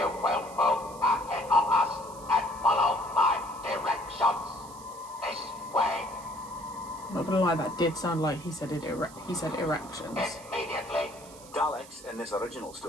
will move ahead of us and follow my directions. This way. I'm not gonna lie, that did sound like he said erections. Immediately. Daleks in this original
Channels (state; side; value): noise; right; hiss, 19 dB below the sound